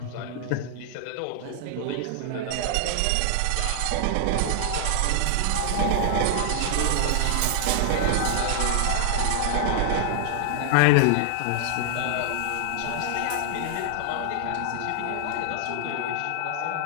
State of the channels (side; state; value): both; different; correlation 0.00